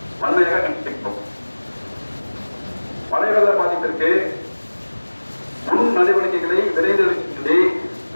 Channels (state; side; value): inverted; both; correlation -1.00